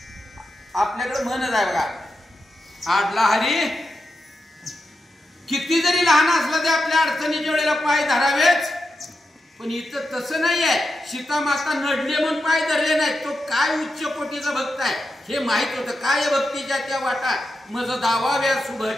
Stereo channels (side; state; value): both; normal; correlation 0.88